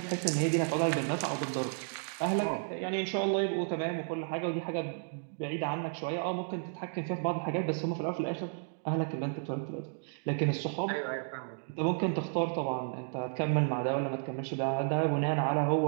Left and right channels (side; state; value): left; silent; digital silence